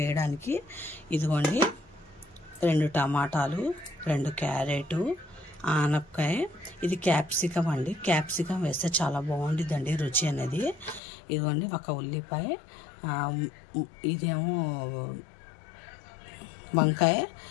వేయడానికి ఇదిగోండి 2 టమాటాలు, 2 క్యారెట్, ఆనపకాయ, ఇది క్యాప్సికం అండి. క్యాప్సికం వేస్తే చాలా బాగుంటుందండి రుచి అనేది. ఇదిగోండి ఒక ఉల్లిపాయ, ఇదేమో వంకాయ,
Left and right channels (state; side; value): drops out; right; at 11.0 s